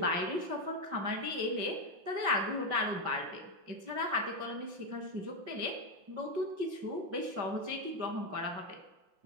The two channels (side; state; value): left; late; 5.8 ms